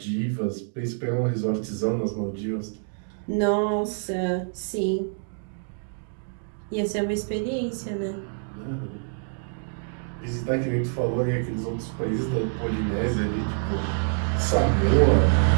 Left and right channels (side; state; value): left; silent; 61 dB below the other